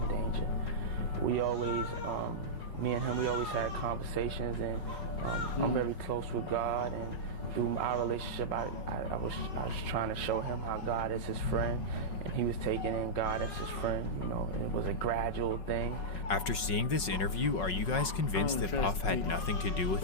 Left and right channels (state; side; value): late; right; 5.4 ms